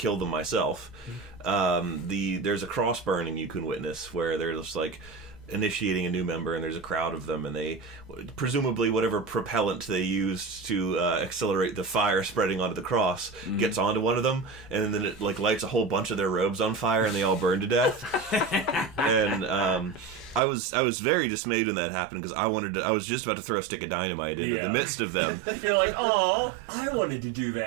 them myself, there's a cross burning you can witness where they're just like initiating a new member, and there's a crowd of them, and they presumably whatever propellant they used to accelerate the fire spreading onto the cross gets onto one of them, and then it like lights a whole bunch of their robes on fire, and they all burn to death. And I was very dismayed when that happened, because I was just about to throw a stick of dynamite in the midst of them. You're like, oh, I wanted to do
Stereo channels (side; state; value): left; drops out; at 20.4 s